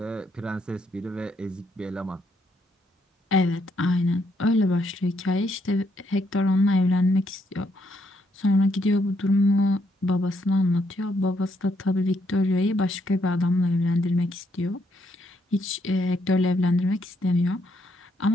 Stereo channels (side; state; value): both; normal; correlation 0.74